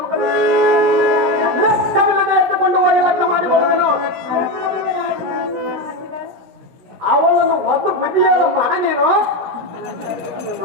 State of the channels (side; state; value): left; late; 17 ms